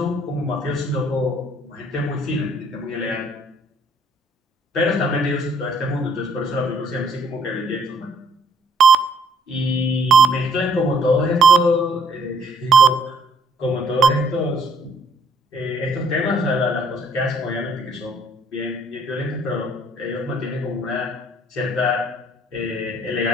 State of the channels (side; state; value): both; normal; correlation 0.64